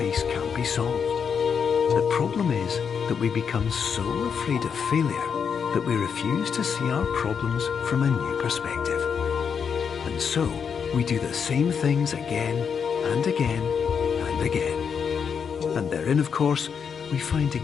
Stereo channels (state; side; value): quieter; right; 6.7 dB